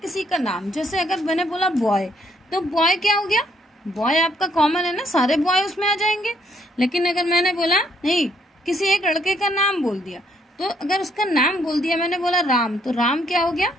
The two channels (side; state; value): both; normal; correlation 0.69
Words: का नाम। जैसे अगर मैंने बोला बॉय, तो बॉय क्या हो गया? बॉय आपका कॉमन है ना, सारे बॉय उसमें आ जाएंगे। लेकिन अगर मैंने बोला नहीं, किसी एक लड़के का नाम बोल दिया, तो अगर उसका नाम बोल दिया, मैंने बोला राम, तो राम क्या हो गया?